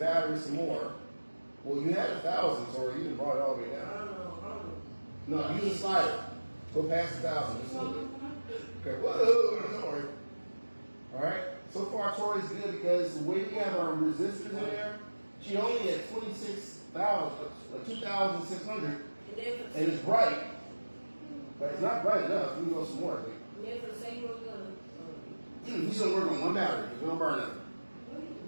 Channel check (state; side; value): inverted; both; correlation -1.00